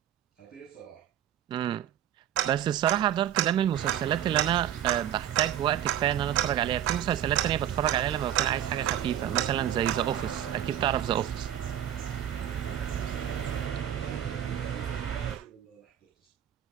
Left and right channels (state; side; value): quieter; left; 10.9 dB